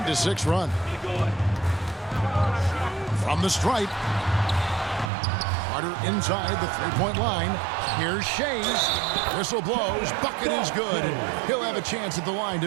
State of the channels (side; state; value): left; drops out; at 5.1 s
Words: run. From the stripe. Carter inside the three-point line. Here's Shays. Whistle blows. Bucket is good. He'll have a chance at the line